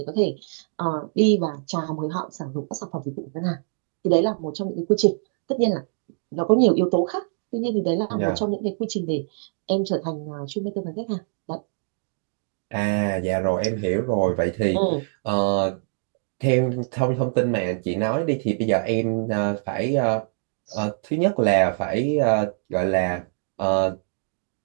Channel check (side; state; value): left; silent; digital silence